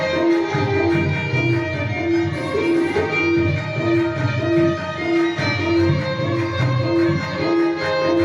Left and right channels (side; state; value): both; identical; correlation 1.00